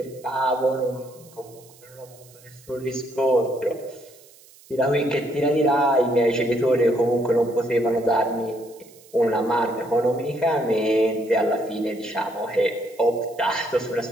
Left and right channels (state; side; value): noise; right; hiss, 25 dB below the sound